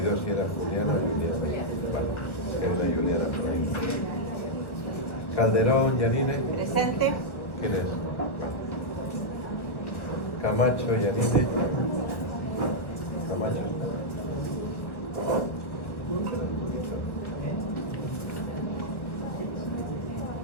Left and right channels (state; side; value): late; right; 1.3 ms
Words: si era Juliana o Juliana. Vale, era Juliana por ahí. Calderón, Yanine. Presente. ¿Quién es? Camacho, Yanine. Camacho.